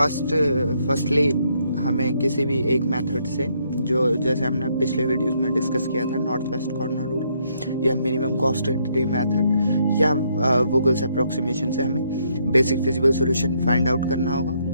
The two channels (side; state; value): both; inverted; correlation -0.73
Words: हमें किसी भी एक मेथड से, जो जैसे हमने पिछले वीडियोस में डिस्कस किया था, नॉर्थ वेस्ट कॉर्नर रूल या मिनिमम कॉस्ट एंटिटी मेथड या वोगल्स अप्रोक्सीमेशन से हमें basic feasible solution find out करना होगा।